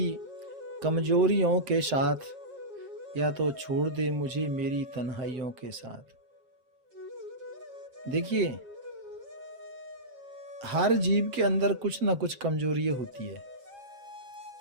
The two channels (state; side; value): late; left; 7.8 ms